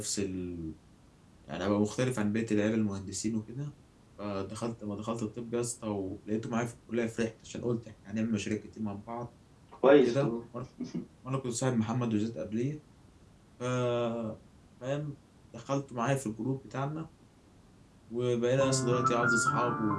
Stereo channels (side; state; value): both; identical; correlation 1.00